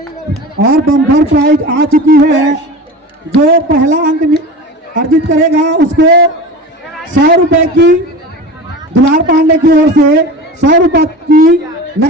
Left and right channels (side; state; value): both; normal; correlation 0.32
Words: और बम्पर प्राइज आ चुकी है। जो पहला अंक अर्जित करेगा उसको 100 रुपए की दुलार पांडे की ओर से 100 रुपए की